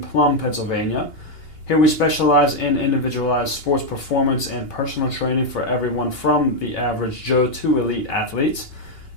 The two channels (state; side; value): late; right; 2.8 ms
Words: Pennsylvania. Here we specialize in individualized sports performance and personal training for everyone from the average Joe to elite athletes.